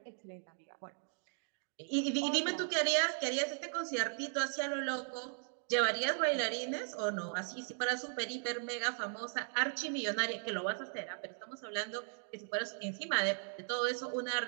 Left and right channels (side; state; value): left; silent; 53 dB below the other